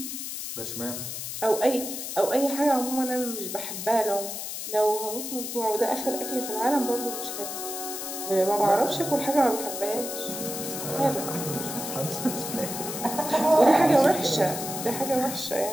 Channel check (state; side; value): noise; left; hiss, 6 dB below the sound